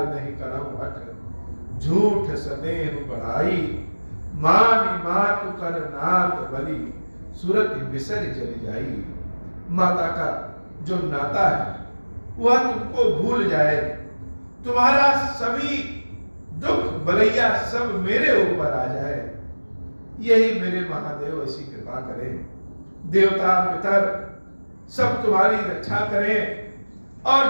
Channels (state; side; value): inverted; both; correlation -1.00